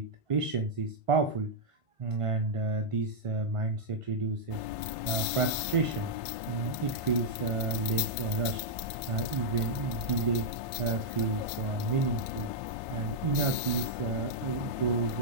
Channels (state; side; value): late; left; 1.5 ms